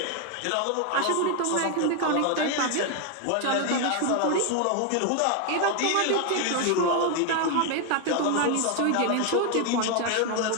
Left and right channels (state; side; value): different; both; correlation 0.01